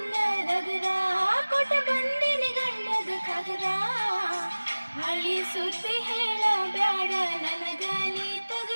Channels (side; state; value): both; inverted; correlation -1.00